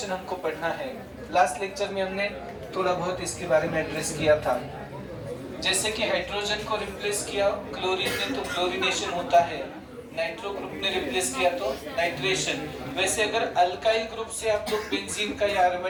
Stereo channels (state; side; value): identical; both; correlation 1.00